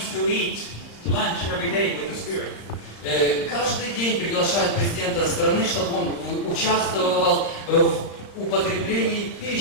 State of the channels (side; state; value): right; late; 35 ms